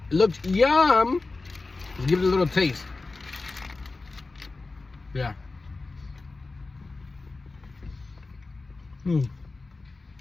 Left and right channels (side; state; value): right; quieter; 3.6 dB